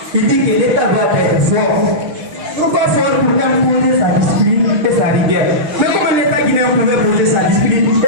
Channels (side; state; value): left; late; 6.2 ms